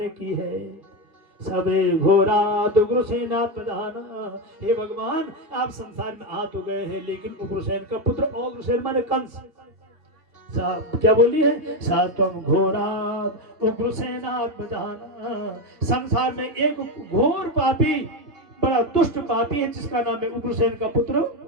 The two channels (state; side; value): late; left; 2.9 ms